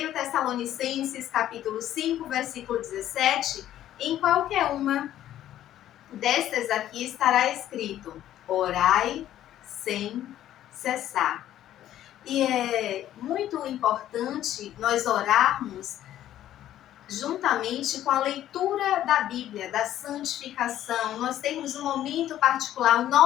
Tessalonicenses, capítulo 5, versículo 17, em qualquer uma destas aqui estará escrito: orai sem cessar. E é muito importante nós orarmos juntamente com a leitura da Bíblia, da santificação, nós temos um momento particular, o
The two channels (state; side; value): quieter; right; 12.2 dB